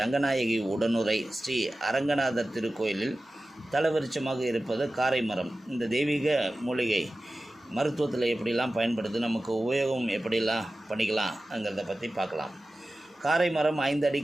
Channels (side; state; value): both; normal; correlation 0.95